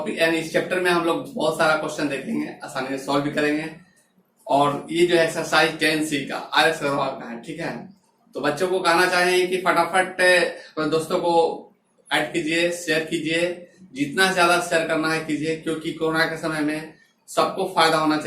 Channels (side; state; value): both; identical; correlation 1.00